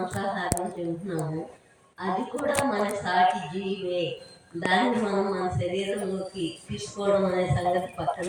తింటున్నాము, అది కూడా మన సాటి జీవే. దాన్ని మనం మన శరీరంలోకి తీసుకోవడం అనే సంగతి పక్కన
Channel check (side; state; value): both; identical; correlation 1.00